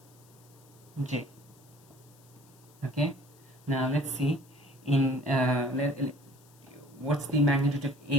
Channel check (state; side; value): noise; left; hiss, 27 dB below the sound